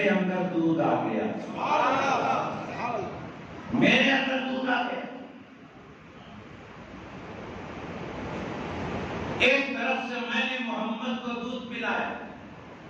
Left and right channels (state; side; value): identical; both; correlation 1.00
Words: اندر دودھ آ گیا، میرے اندر دودھ آ گیا۔ ایک طرف سے میں نے محمد کو دودھ پلایا،